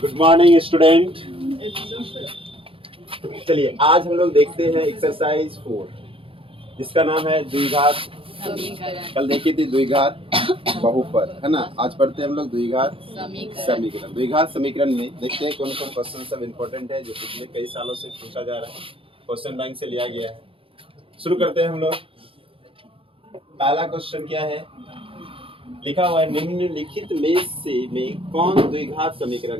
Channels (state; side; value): late; left; 0.26 ms